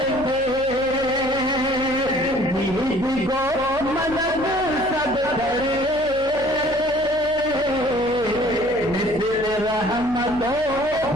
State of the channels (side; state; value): left; noise; hum, 17 dB below the sound